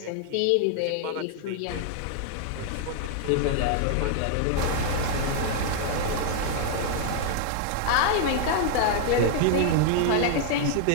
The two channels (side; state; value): both; different; correlation 0.00